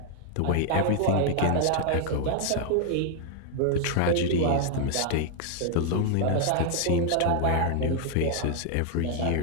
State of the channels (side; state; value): both; different; correlation 0.00